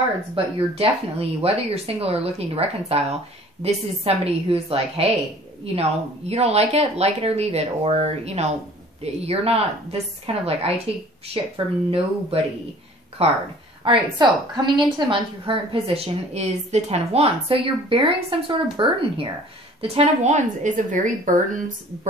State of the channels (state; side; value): normal; both; correlation 0.50